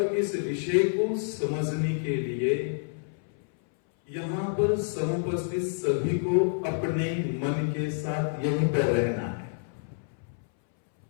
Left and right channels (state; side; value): silent; right; 59 dB below the other